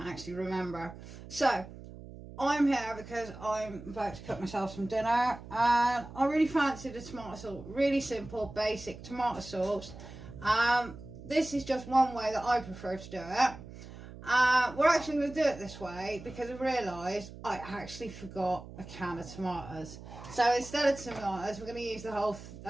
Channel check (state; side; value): noise; right; hum, 15 dB below the sound